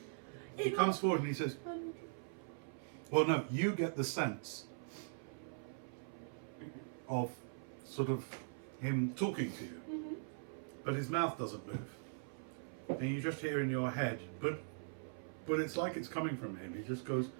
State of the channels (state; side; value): silent; left; 50 dB below the other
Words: He comes forward and he says, well, no, you get the sense of sort of him talking to you, but his mouth doesn't move. And you just hear in your head, but it's like it's coming from him. He just goes,